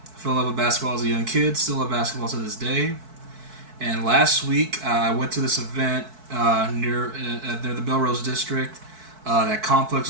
fell in love with basketball as a young kid, still love basketball to this day. And last week, I went to this event near the Melrose District that Complex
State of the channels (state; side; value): late; left; 4.6 ms